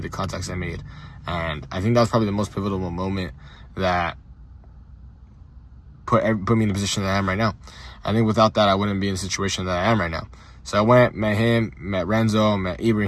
the contacts I made, and I think that was probably the most pivotal moment that put me in the position that I am right now. I think without that, I wouldn't be in the situation that I am right now. So I went, met him, met Renzo, met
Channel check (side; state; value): both; identical; correlation 1.00